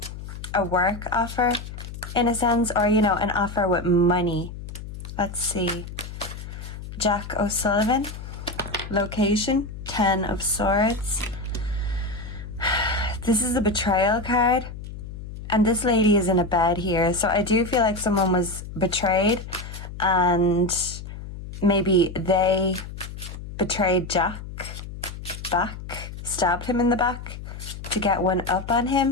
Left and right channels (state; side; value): noise; left; hum, 11 dB below the sound